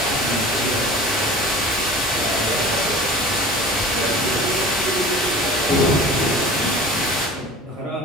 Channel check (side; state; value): both; normal; correlation 0.40